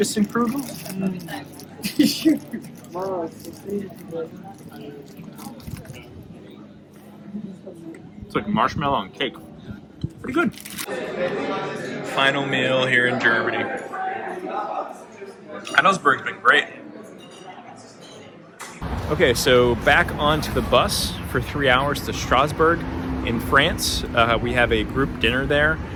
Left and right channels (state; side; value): identical; both; correlation 1.00